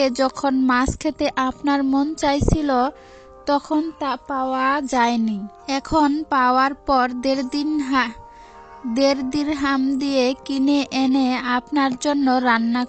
যখন মাছ খেতে আপনার মন চাইছিল, তখন তা পাওয়া যায়নি। এখন পাওয়ার পর 1.5 দিরহাম দিয়ে কিনে এনে আপনার জন্য রান্না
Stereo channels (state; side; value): identical; both; correlation 1.00